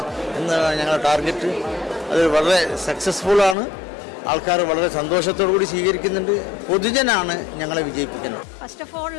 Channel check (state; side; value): drops out; right; at 3.6 s